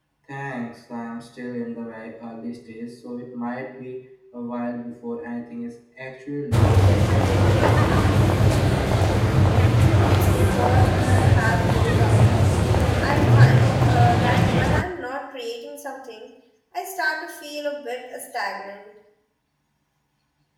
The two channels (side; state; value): both; identical; correlation 1.00